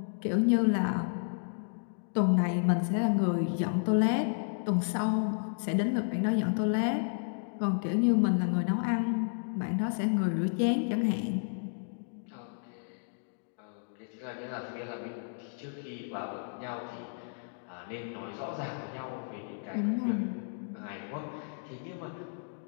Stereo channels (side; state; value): right; silent; digital silence